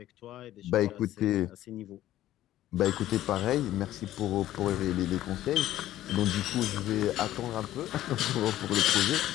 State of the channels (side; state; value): right; quieter; 13.7 dB